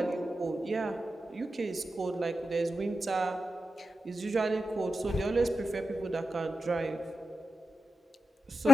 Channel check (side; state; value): both; normal; correlation 0.89